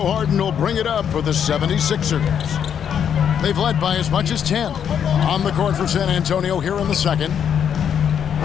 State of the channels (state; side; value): quieter; right; 8.4 dB